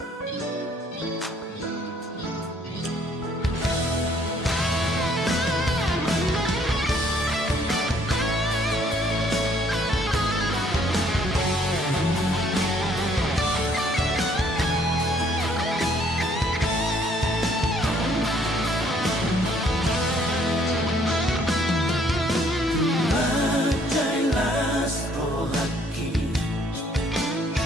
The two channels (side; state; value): both; normal; correlation 0.64